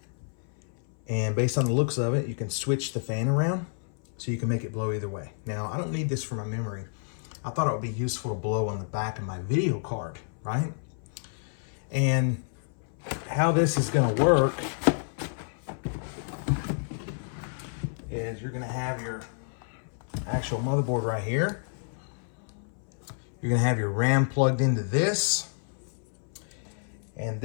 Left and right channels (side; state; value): right; silent; 58 dB below the other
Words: And based on the looks of it, you can switch the fan around so you can make it blow either way. Now, I don't need this for my memory. I thought it would be useful to blow on the back of my video card, right? And how this is going to work is you're going to have your actual motherboard right here. You're going to have your RAM plugged into this. And